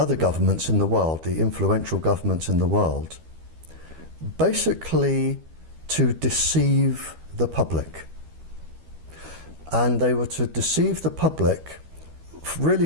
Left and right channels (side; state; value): left; late; 12 ms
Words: governments in the world, the influential governments in the world, basically to deceive the public. And they were to deceive the public really